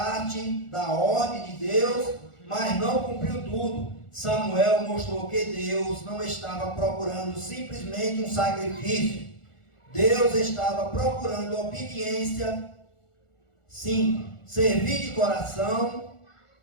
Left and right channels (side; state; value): right; late; 1.4 ms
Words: da ordem de Deus, mas não cumpriu tudo. Samuel mostrou que Deus não estava procurando simplesmente um sacrifício. Deus estava procurando obediência. 5. Servir de coração.